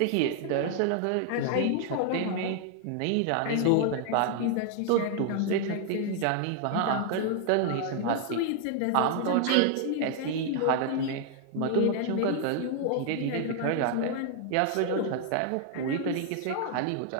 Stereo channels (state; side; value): different; both; correlation 0.00